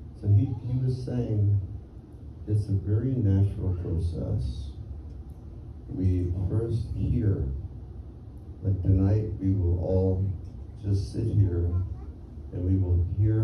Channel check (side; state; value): both; identical; correlation 1.00